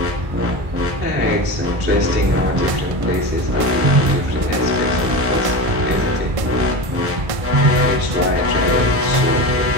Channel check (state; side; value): late; left; 1.5 ms